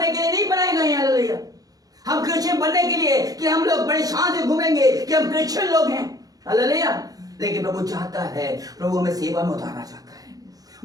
के लिए नहीं बनाए गए हैं। हालेलुया। हम क्रिश्चियन बनने के लिए कि हम लोग बड़े शान से घूमेंगे कि हम क्रिश्चियन लोग हैं। हालेलुया। लेकिन प्रभु चाहता है, प्रभु हमें सेवा में उतारना चाहता है।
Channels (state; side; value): late; left; 0.18 ms